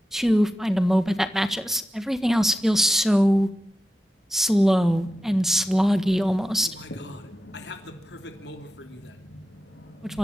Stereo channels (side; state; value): both; normal; correlation 0.92